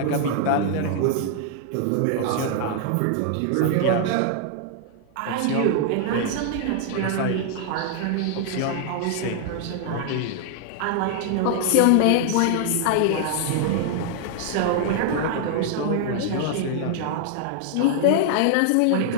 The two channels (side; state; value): both; different; correlation 0.00